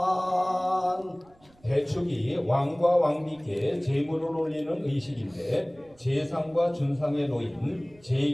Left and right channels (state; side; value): noise; right; rumble, 29 dB below the sound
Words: 대축이 왕과 왕비께 제물을 올리는 의식인데 제상과 준상에 놓인